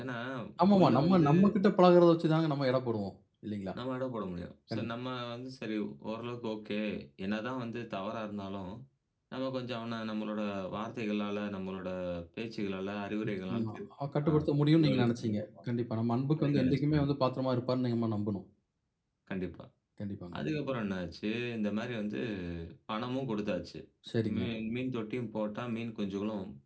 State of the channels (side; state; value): both; identical; correlation 1.00